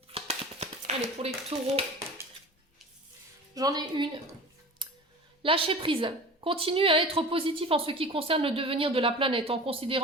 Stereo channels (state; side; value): normal; both; correlation 0.37